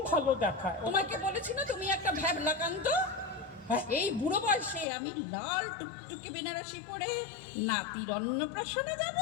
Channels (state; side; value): drops out; right; at 4.9 s